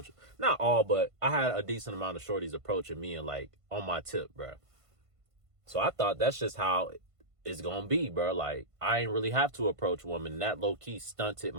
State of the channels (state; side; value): late; left; 1.5 ms